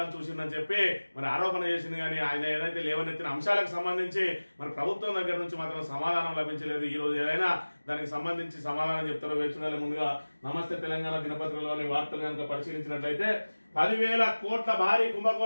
చూసిందని చెప్పి మరి ఆరోపణ చేసింది. కానీ ఆయన ఏదైతే లేవనెత్తిన అంశాలకు సంబంధించి మరి ప్రభుత్వం దగ్గర నుంచి మాత్రం సమాధానం లభించలేదు. ఈ రోజు ఏదైనా దానికి సంబంధించి సమాధానం చెప్తారో వేచుకోవాలి. ముందుగా నమస్తే తెలంగాణ దినపత్రికలోని వార్తలు కనుక పరిశీలించినట్లయితే 10,000 కోట్ల భారీ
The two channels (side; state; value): both; inverted; correlation -1.00